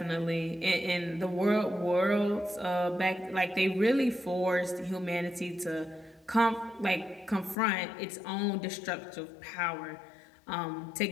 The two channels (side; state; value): right; drops out; at 7.6 s